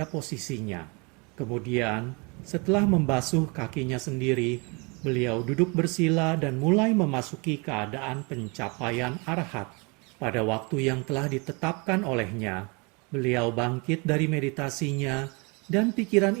posisinya. Kemudian, setelah membasuh kakinya sendiri, beliau duduk bersila dan mulai memasuki keadaan pencapaian arahat. Pada waktu yang telah ditetapkan olehnya, beliau bangkit dari meditasinya dan pikiran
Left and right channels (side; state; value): left; quieter; 30.5 dB